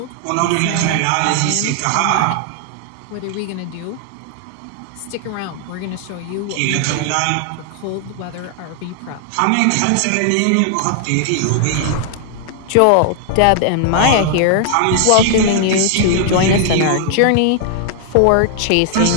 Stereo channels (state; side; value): different; both; correlation 0.00